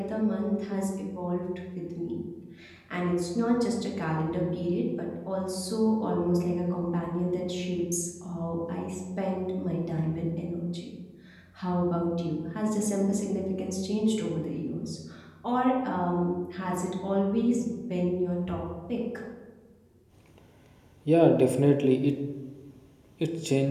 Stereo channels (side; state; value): both; identical; correlation 1.00